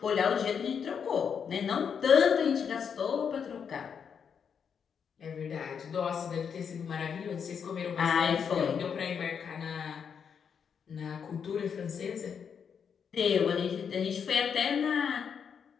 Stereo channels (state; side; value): quieter; right; 7.0 dB